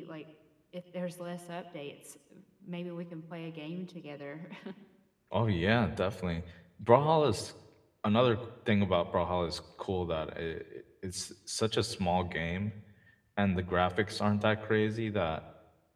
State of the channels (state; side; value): identical; both; correlation 1.00